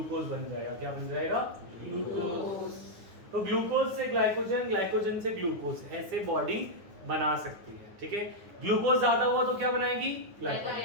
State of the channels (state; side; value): late; left; 9.7 ms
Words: बन जाएगा। क्या बन जाएगा, ग्लूकोज। तो ग्लूकोज से ग्लाइकोजन, ग्लाइकोजन से ग्लूकोज, ऐसे बॉडी बना सकती है। ठीक है, ग्लूकोज ज्यादा हुआ तो क्या बनाएगी,